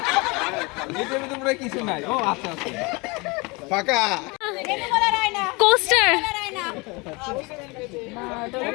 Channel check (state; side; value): quieter; right; 26.7 dB